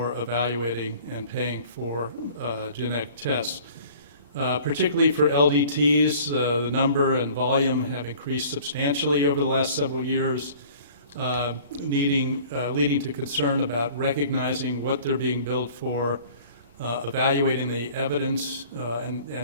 evaluating and paying for genetic tests. Particularly for LDTs, the number and volume have increased substantially over the last several years, leading to concern about recognizing what they're being billed for, evaluating the evidence,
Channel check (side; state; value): both; inverted; correlation -0.49